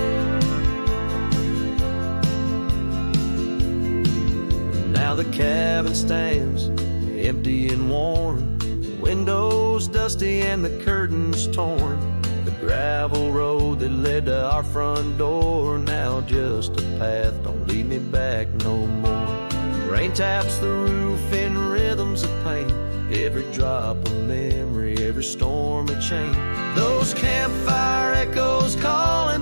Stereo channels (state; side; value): inverted; both; correlation -1.00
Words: Now the cabin stands empty and worn, windows dusty and the curtains torn. The gravel road that led to our front door, now just a path, don't lead me back no more. Rain taps the roof in rhythms of pain, every drop of memory, every storm a chain. Those campfire echoes calling